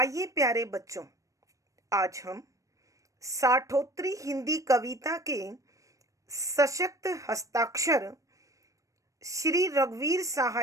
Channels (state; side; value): late; left; 0.16 ms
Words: प्यारे बच्चों, आज हम साठोत्तरी हिंदी कविता के सशक्त हस्ताक्षर श्री रघुवीर